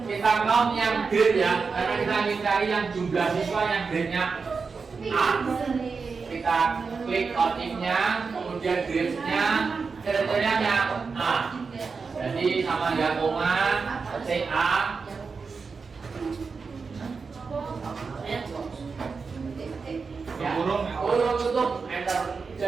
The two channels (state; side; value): quieter; left; 4.9 dB